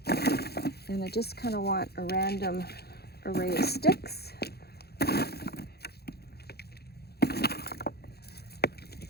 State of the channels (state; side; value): late; right; 0.46 ms